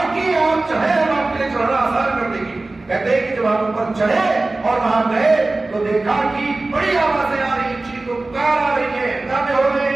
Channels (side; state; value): left; quieter; 3.1 dB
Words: کہ آپ چڑھے، ہم آپ کے لیے چڑھنا آسان کر دیں گے۔ کہتے ہیں کہ جب آپ اوپر چڑھے اور وہاں گئے تو دیکھا کہ بڑی آوازیں آ رہی ہیں، چیخ و پکار آ رہی ہے، ہنگامے ہو رہے